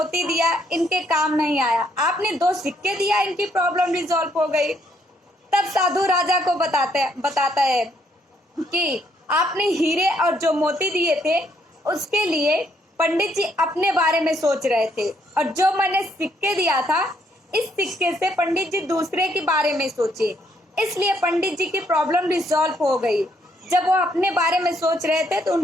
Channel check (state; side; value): normal; both; correlation 0.71